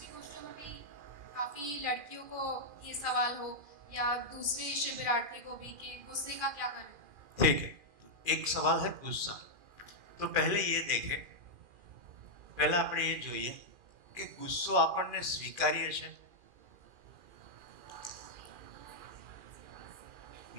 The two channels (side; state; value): left; late; 2.4 ms